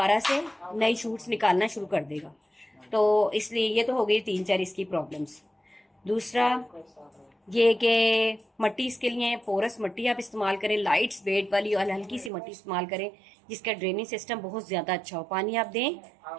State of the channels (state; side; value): drops out; left; at 12.3 s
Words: से नई शूट्स निकालना शुरू कर देगा। तो इसलिए ये तो हो गई 3-4 इसकी प्रॉब्लम्स। दूसरा ये कि मट्टी इसके लिए पोरस मट्टी आप इस्तेमाल करें, लाइट वेट वाली और हल्की सी मट्टी इस्तेमाल करें, जिसका ड्रेनिंग सिस्टम बहुत ज़्यादा अच्छा हो। पानी आप दें